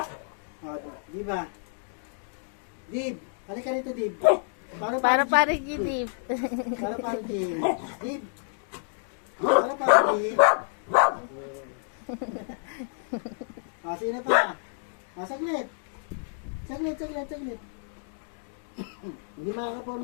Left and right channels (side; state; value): right; silent; digital silence